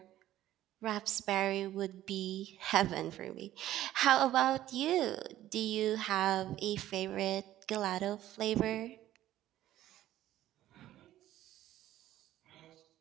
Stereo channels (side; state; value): left; quieter; 13.6 dB